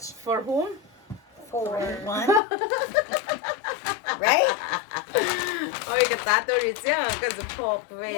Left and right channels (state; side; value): drops out; right; at 2.4 s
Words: For whom? for one. Right? Oh, the tattoo is yeah, because the pop.